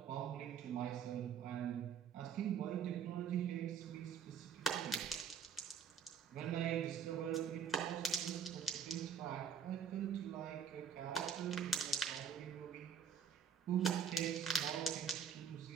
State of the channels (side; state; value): left; quieter; 7.3 dB